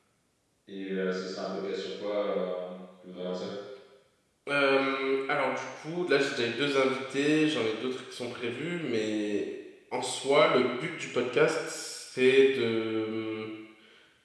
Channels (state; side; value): identical; both; correlation 1.00